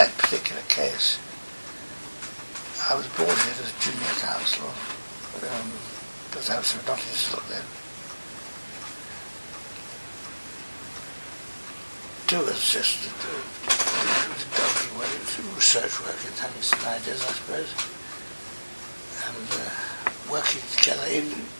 particular case, I was brought in as junior counsel because I was not still then. To assist the donkey work, research work, and having some ideas, I suppose, and working together in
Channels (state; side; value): inverted; both; correlation -1.00